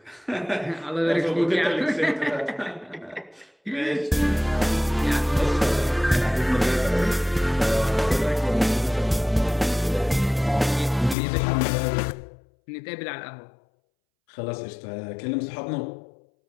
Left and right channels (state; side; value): drops out; right; at 11.2 s